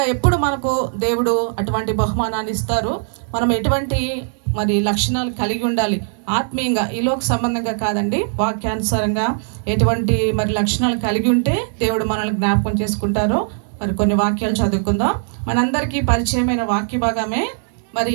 ఎప్పుడు మనకు దేవుడు అటువంటి బహుమానాన్ని ఇస్తారు, మనం ఎటువంటి మరి లక్షణాలు కలిగి ఉండాలి ఆత్మీయంగా, ఈలోక సంబంధంగా కాదండి, వాక్యానుసారంగా ఎటువంటి మరి లక్షణాలు కలిగి ఉంటే దేవుడు మనల్ని జ్ఞాపకం చేసుకుంటారో మరి కొన్ని వాక్యాలు చదువుకుందాం. మనందరికీ పరిచయమైన వాక్య భాగమే. మరి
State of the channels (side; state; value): left; silent; digital silence